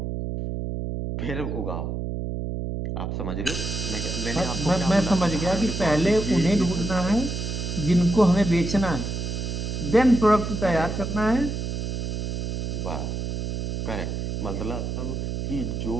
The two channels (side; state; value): right; noise; hum, 3 dB below the sound